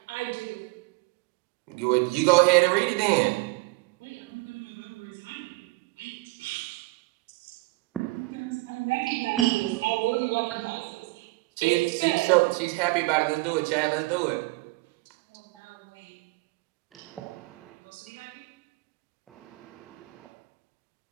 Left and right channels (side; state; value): left; quieter; 23.1 dB